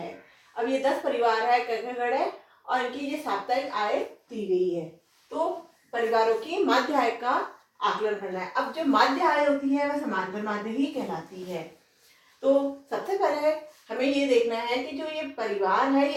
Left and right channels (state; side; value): identical; both; correlation 1.00